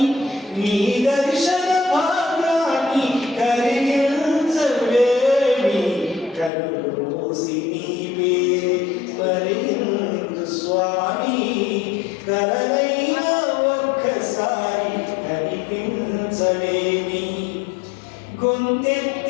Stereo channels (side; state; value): right; drops out; at 6.5 s